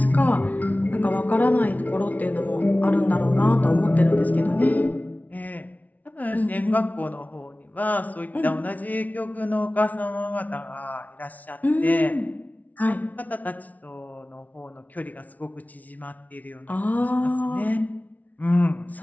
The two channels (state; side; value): late; right; 0.074 ms